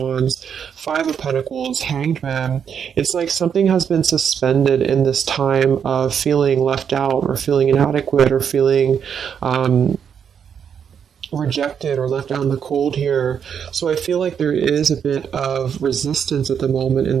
Five of Pentacles, Hanged Man, it's like something has been suspended in this time of feeling left out or feeling inadequate or feeling rejected or left out in the cold here. So I feel like there is a bit of resistance at the moment in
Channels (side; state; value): left; quieter; 7.7 dB